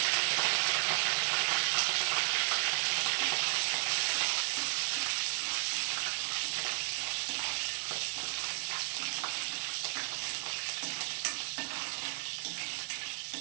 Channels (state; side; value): silent; left; digital silence